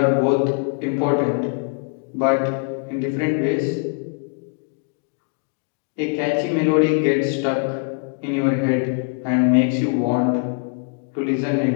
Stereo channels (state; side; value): quieter; right; 39.0 dB